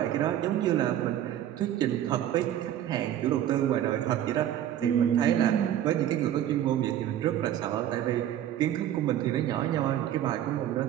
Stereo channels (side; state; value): left; quieter; 11.4 dB